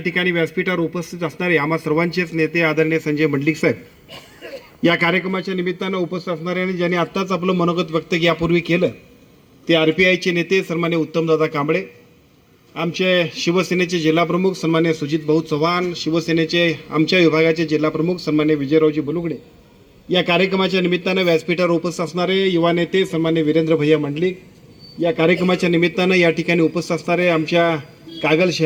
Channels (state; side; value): identical; both; correlation 1.00